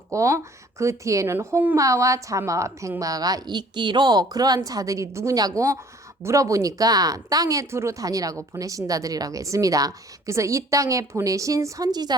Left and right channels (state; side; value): normal; both; correlation 0.54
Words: 그 뒤에는 홍마와 자마와 백마가 있기로 그러한 자들이 누구냐고 물어보니까 땅에 두루 다니라고 보내신 자들이라고 했습니다. 그래서 이 땅에 보내신